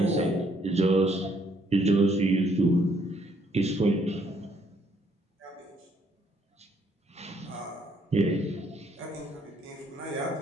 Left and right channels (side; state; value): both; normal; correlation 0.68